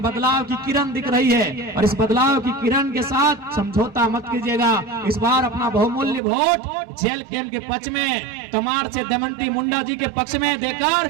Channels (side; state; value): left; drops out; at 6.2 s